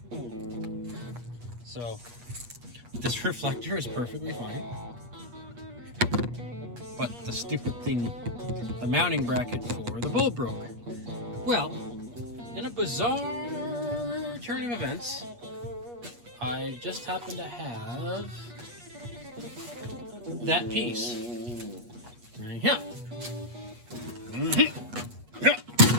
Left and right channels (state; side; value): late; left; 8.3 ms